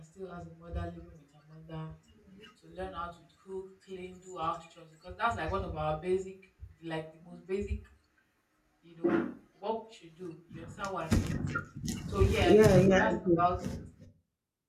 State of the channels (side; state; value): both; identical; correlation 1.00